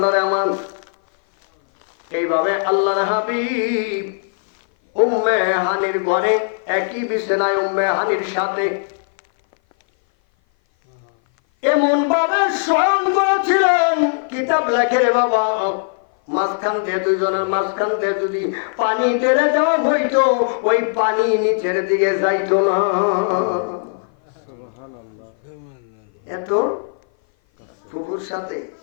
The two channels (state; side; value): silent; right; 57 dB below the other